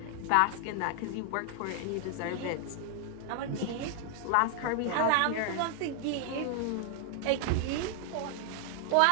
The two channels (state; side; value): different; both; correlation 0.00